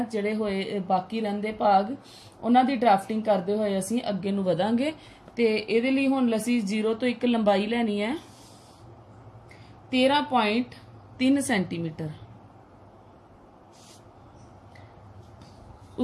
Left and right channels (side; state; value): both; identical; correlation 1.00